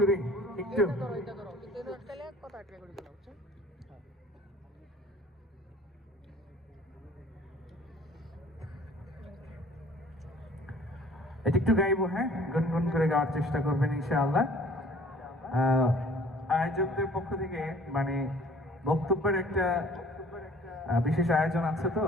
একটু এটা একটু গাইবো, হ্যাঁ, গুনগুন করে গাওয়ার চেষ্টা করবেন ইনশাআল্লাহ। আয়োজকদের পক্ষ থেকে মানে বক্তব্যের একটা বিশেষ আয়োজন আছে, তো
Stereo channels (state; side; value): normal; both; correlation 0.52